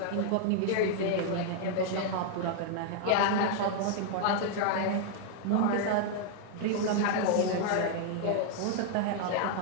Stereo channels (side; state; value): both; different; correlation 0.00